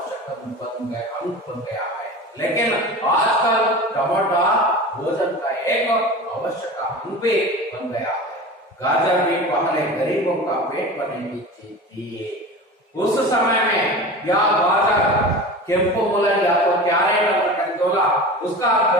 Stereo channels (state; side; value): normal; both; correlation 0.33